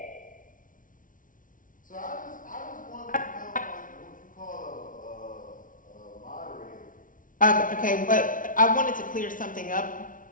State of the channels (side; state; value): right; late; 0.38 ms